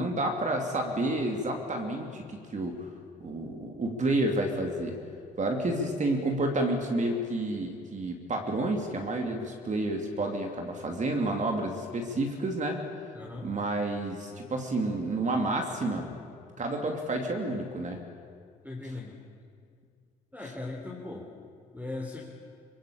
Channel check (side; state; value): both; normal; correlation 0.50